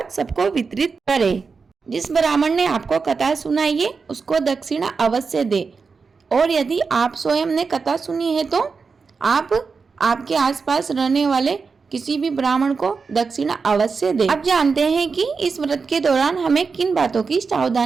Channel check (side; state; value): left; quieter; 4.9 dB